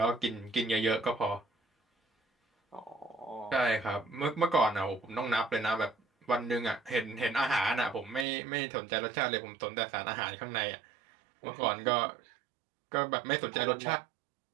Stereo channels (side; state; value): left; drops out; at 8.2 s